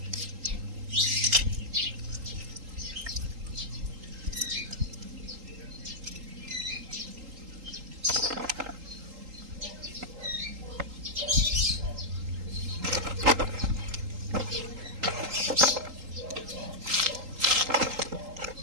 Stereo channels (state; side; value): late; left; 3.8 ms